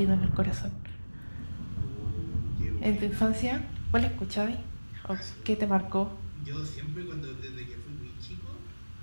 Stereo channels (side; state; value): both; inverted; correlation -1.00